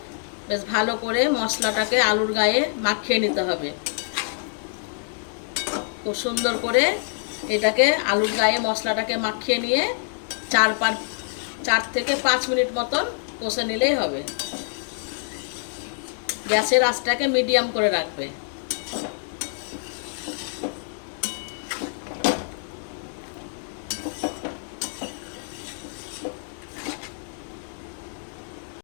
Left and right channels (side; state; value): right; silent; digital silence